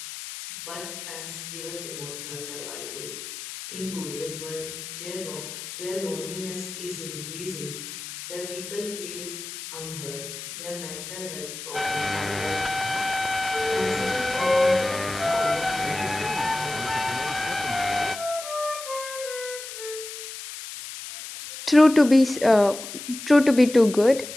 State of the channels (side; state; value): left; noise; hiss, 10 dB below the sound